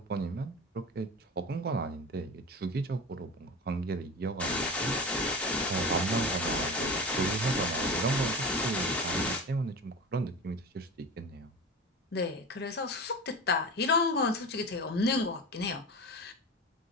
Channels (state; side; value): normal; both; correlation 0.30